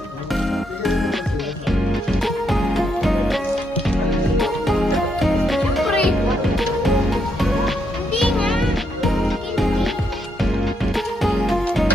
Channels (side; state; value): both; normal; correlation 0.78